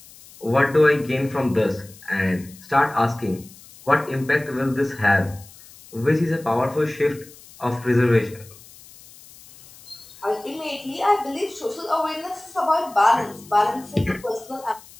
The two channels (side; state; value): left; noise; hiss, 22 dB below the sound